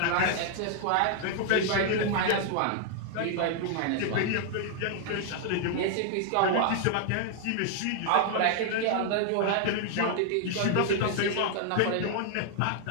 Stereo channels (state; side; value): different; both; correlation 0.00